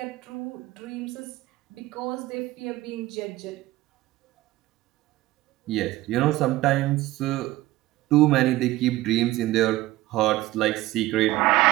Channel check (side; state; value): left; quieter; 17.3 dB